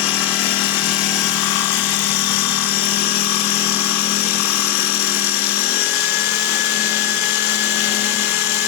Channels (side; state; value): right; quieter; 11.5 dB